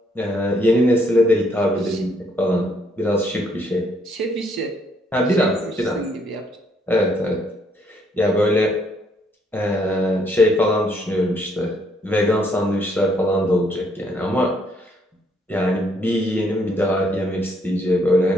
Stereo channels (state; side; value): normal; both; correlation 0.70